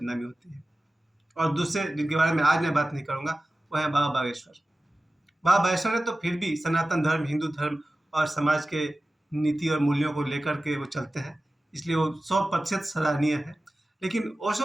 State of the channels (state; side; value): normal; both; correlation 0.96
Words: होती है। और दूसरे जिनके बारे में आज मैं बात नहीं करूँगा वो है बाबा बागेश्वर। बाबा बागेश्वर ने तो फिर भी सनातन धर्म, हिंदू धर्म और समाज के नीति और मूल्यों को लेकर के वो चलते हैं, इसलिए वो 100% सराहनीय है। लेकिन